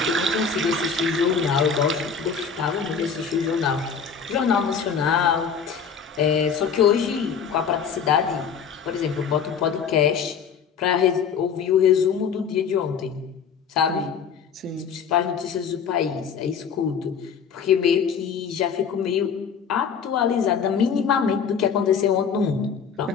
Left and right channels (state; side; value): quieter; right; 6.5 dB